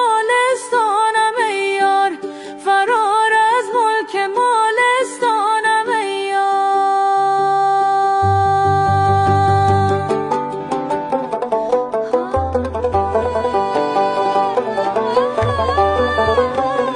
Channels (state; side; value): identical; both; correlation 1.00